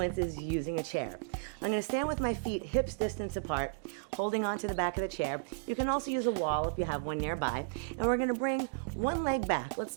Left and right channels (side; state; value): left; quieter; 33.9 dB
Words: is using a chair. I'm gonna stand with my feet hips distance apart, holding onto the back of the chair. You can also use a wall if you have one nearby. And we're gonna bring one leg back. Let's